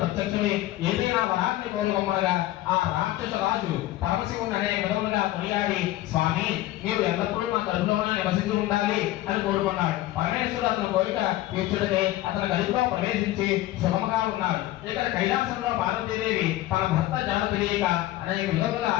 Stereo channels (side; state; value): right; quieter; 15.7 dB